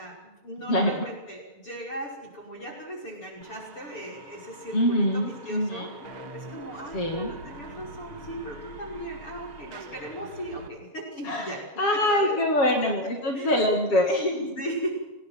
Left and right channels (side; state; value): right; late; 6.9 ms